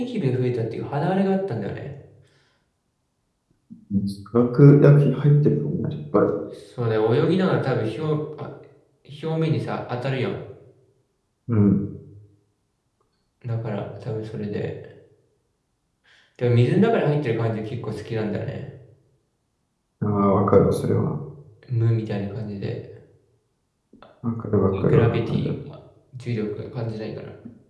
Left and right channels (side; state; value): both; identical; correlation 1.00